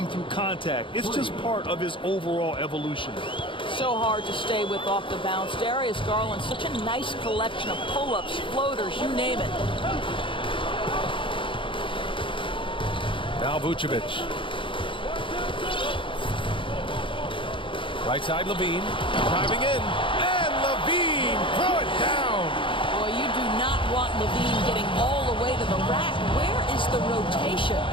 through contact. It's just part of his overall evolution. So hard to stay with off the bounce. Darius Garland, such a nice collection of pull-ups, floaters, you name it. Now Vucevic. Right side, Levine, driving in, and Levine, throw it down. Boy, you do not want Levine getting all the way to the rack. Where is the rotation?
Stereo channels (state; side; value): late; right; 0.25 ms